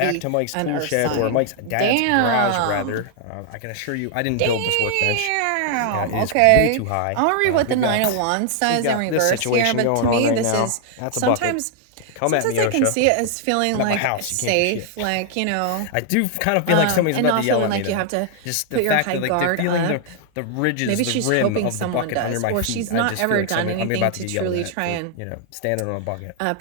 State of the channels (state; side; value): different; both; correlation 0.00